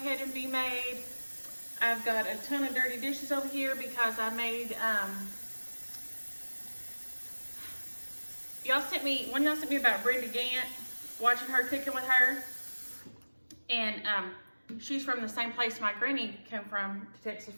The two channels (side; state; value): both; inverted; correlation -1.00